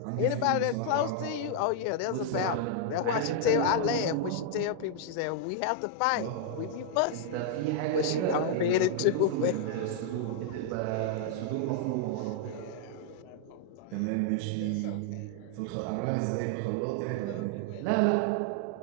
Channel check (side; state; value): both; different; correlation -0.01